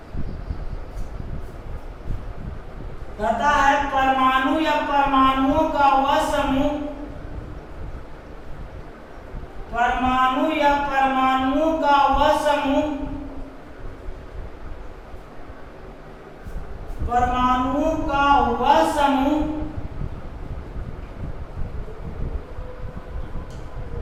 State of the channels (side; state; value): both; identical; correlation 1.00